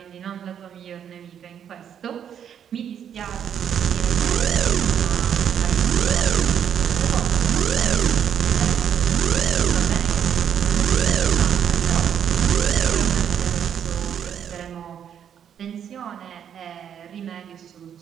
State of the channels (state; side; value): quieter; left; 8.8 dB